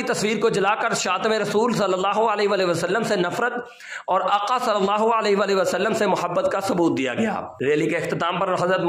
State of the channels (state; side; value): identical; both; correlation 1.00